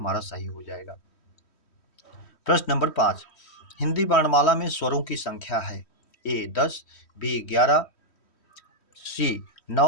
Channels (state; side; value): late; right; 3.1 ms